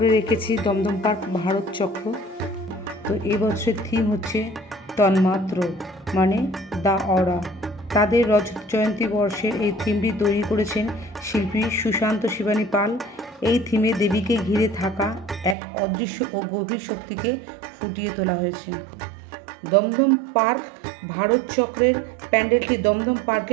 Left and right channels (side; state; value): left; drops out; at 15.6 s